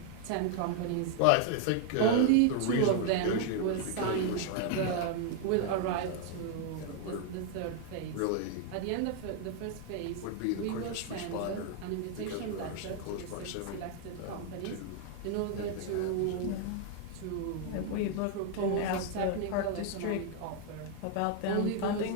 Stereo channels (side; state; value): both; different; correlation 0.00